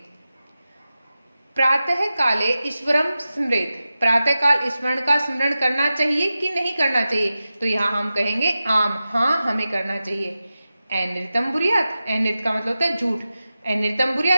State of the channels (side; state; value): both; inverted; correlation -0.94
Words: प्रातः काले ईश्वरम स्मृत, प्रातः काल ईश्वर का स्मरण करना चाहिए कि नहीं करना चाहिए, तो यहाँ हम कहेंगे आम, हाँ हमें करना चाहिए। अनृतम बुरियात, अनृत का मतलब होता है झूठ, अनृतम